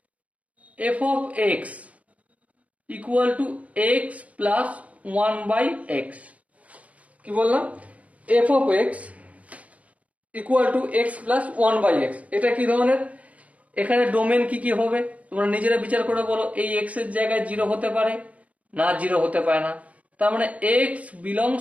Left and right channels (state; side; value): late; left; 0.067 ms